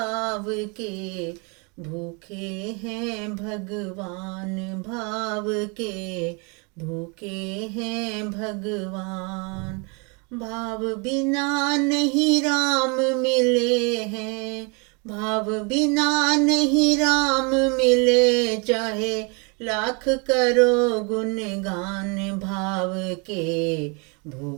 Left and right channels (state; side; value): quieter; left; 32.7 dB